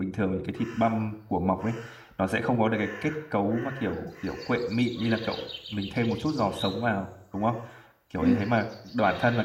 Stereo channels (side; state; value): both; identical; correlation 1.00